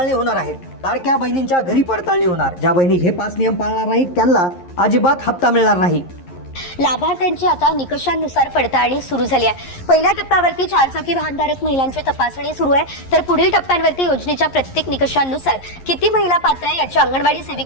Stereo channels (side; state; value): right; late; 11 ms